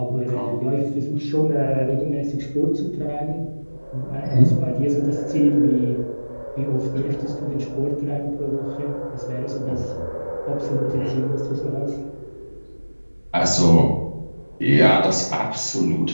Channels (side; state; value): both; inverted; correlation -1.00